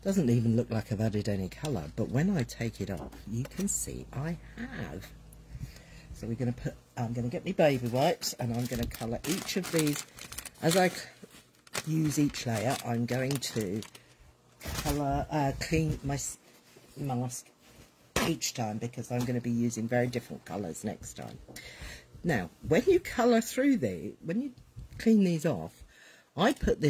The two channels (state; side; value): identical; both; correlation 1.00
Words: doesn't even look like I've added any colour, but when I take it off, you can see I have. So we're going to put, I'm going to get my baby wipes, and I'm going to colour each of these. As I use each layer, I'm going to colour, clean my mask each time, because I'm going to be using very different colours next time. Now, when you colour through when you clean these off, I put